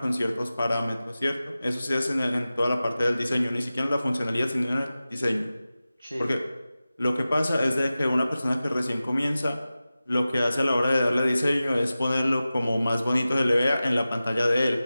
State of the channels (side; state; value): both; inverted; correlation -0.95